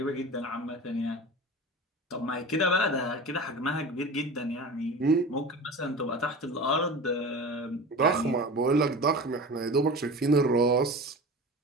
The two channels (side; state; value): both; normal; correlation 0.33